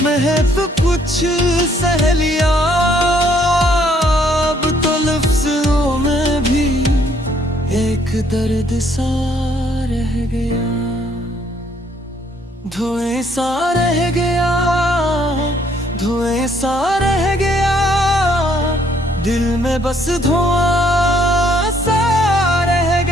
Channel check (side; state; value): both; normal; correlation 0.66